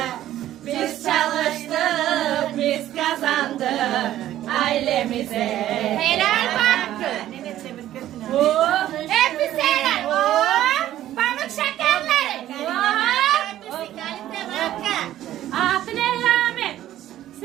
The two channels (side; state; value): left; quieter; 13.0 dB